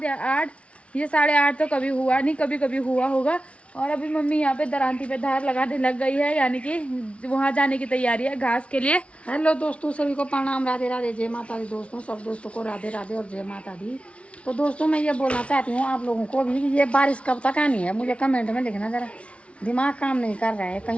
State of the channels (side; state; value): right; late; 0.062 ms